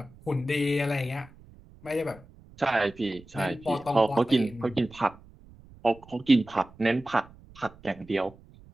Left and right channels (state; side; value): noise; right; rumble, 23 dB below the sound